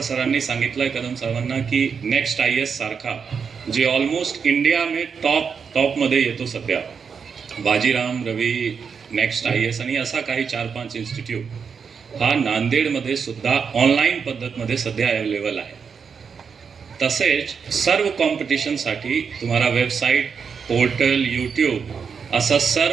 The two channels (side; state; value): left; quieter; 6.2 dB